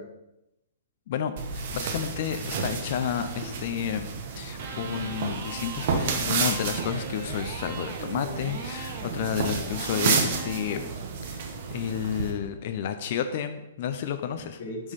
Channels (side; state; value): both; inverted; correlation -0.39